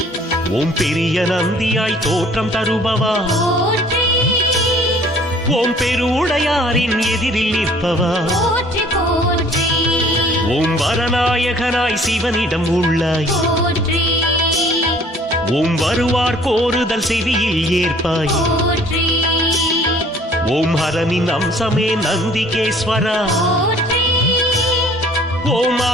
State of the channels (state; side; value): normal; both; correlation 0.55